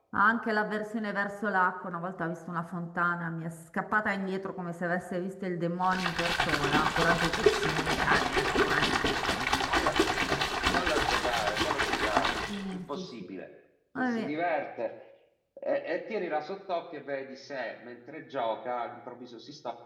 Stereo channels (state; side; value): identical; both; correlation 1.00